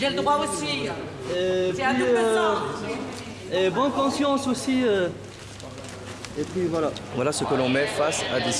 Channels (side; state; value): both; identical; correlation 1.00